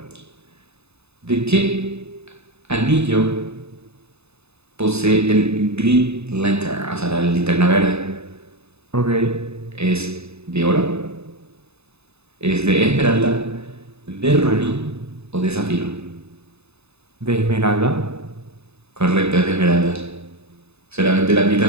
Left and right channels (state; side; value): late; left; 0.80 ms